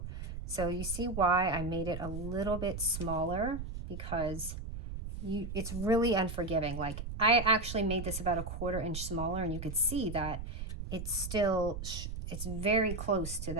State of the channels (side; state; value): right; noise; rumble, 7 dB below the sound